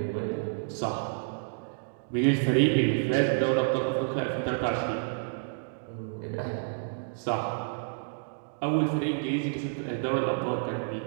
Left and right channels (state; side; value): silent; left; digital silence